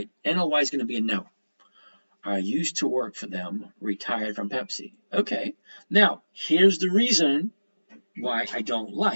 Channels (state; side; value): inverted; both; correlation -1.00